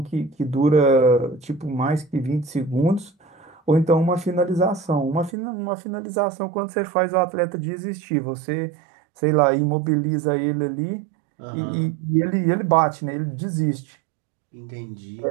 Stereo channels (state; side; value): drops out; left; at 5.4 s